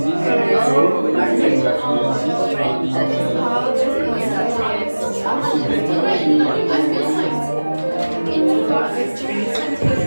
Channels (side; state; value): both; inverted; correlation -1.00